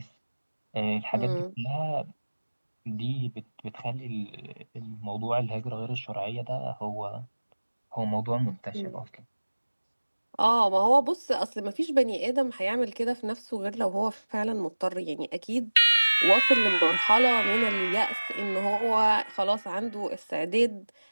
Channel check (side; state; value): both; inverted; correlation -1.00